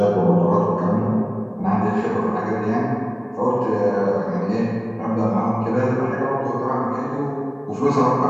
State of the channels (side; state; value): both; identical; correlation 1.00